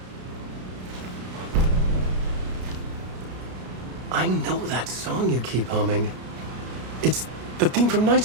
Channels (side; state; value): left; late; 33 ms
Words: I know that song you keep humming. It's the theme from Night